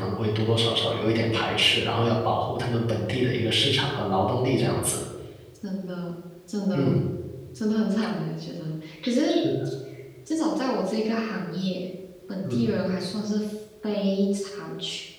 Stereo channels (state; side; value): identical; both; correlation 1.00